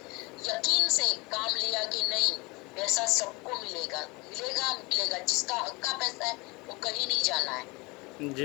यकीन से काम लिया कि नहीं पैसा सबको मिलेगा, मिलेगा। जिसका हक का पैसा है वो कहीं नहीं जाना है।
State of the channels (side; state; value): right; quieter; 25.4 dB